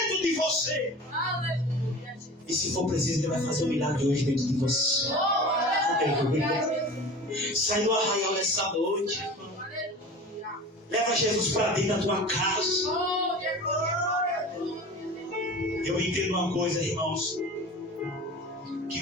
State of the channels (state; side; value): normal; both; correlation 0.36